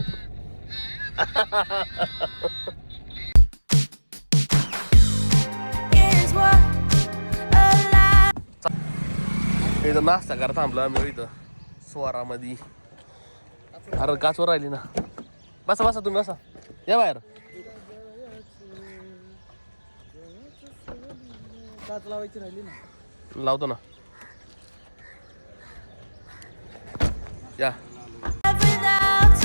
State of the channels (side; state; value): both; inverted; correlation -1.00